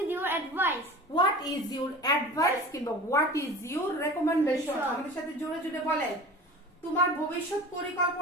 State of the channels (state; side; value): normal; both; correlation 0.38